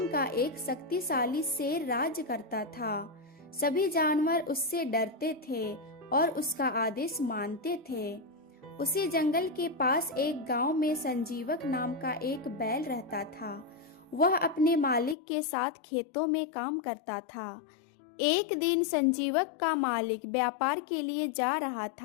का एक शक्तिशाली शेर राज्य करता था। सभी जानवर उससे डरते थे और उसका आदेश मानते थे। उसी जंगल के पास एक गांव में संजीवक नाम का एक बैल रहता था। वह अपने मालिक के साथ खेतों में काम करता था। एक दिन संजीवक का मालिक व्यापार के लिए जा रहा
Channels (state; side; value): drops out; right; at 15.2 s